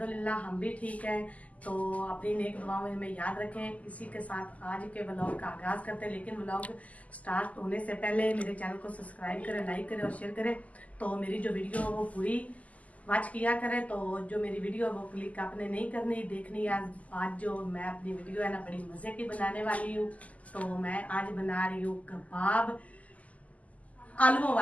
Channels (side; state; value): right; late; 0.072 ms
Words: हम भी ठीक हैं। तो अपनी नेक दुआओं में हमें याद रखें। इसी के साथ आज के व्लॉग का आगाज करते हैं, लेकिन व्लॉग स्टार्ट होने से पहले मेरे चैनल को सब्सक्राइब करें, लाइक करें और शेयर करें। तो मेरी जो वीडियो है वो पूरी वॉच किया करें। तो जो मेरी वीडियो है वो क्लिक आपने नहीं करनी, देखनी है। आज जो मैं अपनी वीडियो है ना बड़ी मजे की बनाने वाली हूँ। तो मैं आज बना रही हूँ कबाब, आलूओं